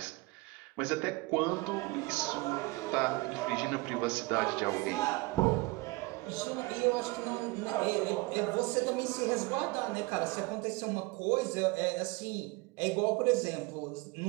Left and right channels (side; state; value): left; quieter; 23.6 dB